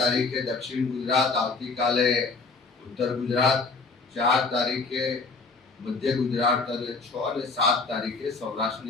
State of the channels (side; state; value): right; quieter; 4.0 dB